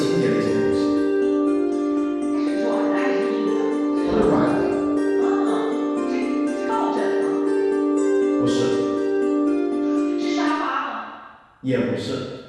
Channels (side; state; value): both; identical; correlation 1.00